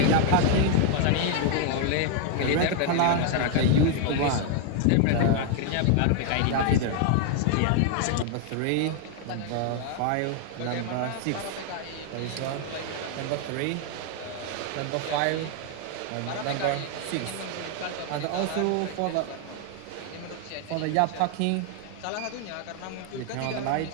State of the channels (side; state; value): both; different; correlation 0.00